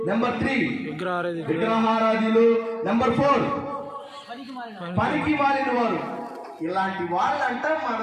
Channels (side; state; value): both; identical; correlation 1.00